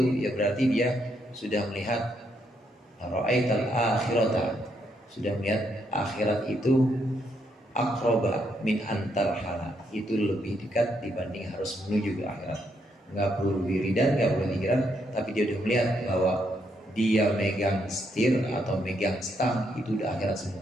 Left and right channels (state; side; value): normal; both; correlation 0.76